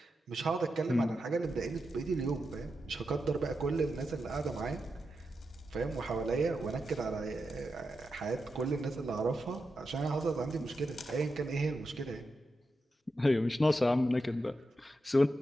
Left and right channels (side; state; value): both; normal; correlation 0.88